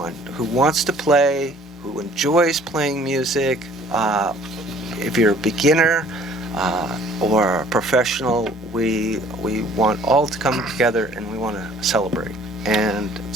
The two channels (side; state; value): both; normal; correlation 0.54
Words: who wants to play, who enjoys playing music. If you're a beginner or a professional, we want all to come together, and we want to celebrate